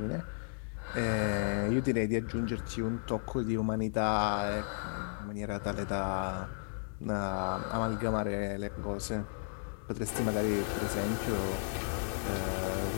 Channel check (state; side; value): silent; right; 55 dB below the other